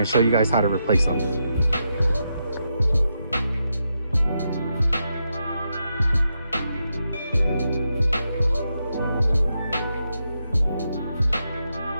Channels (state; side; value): inverted; both; correlation -0.84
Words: show you guys how to replace them.